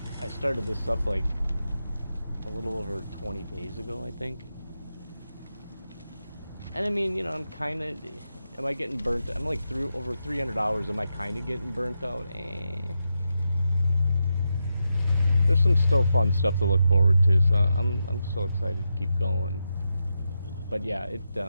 started this up like a little over 20 days ago, I think. And I mean, you know, I'm kinda, am I getting burnt? I'm like over 300 hours, am I kinda getting burnt out? There's some still fun stuff to look forward to, so I'm still excited to keep going. But yeah,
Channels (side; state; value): both; inverted; correlation -0.87